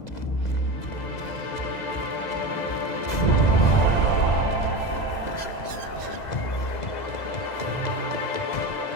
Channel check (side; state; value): right; late; 2.0 ms